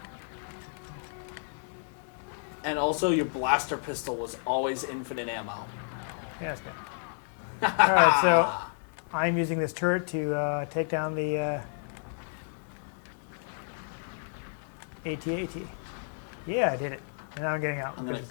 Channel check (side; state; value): right; silent; digital silence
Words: And also, your blaster pistol was always infinite ammo. Yeah, that's good. All right, so I'm using this turret to take down the AT-AT. Yeah, I did it. And now I'm getting out. I'm going because to the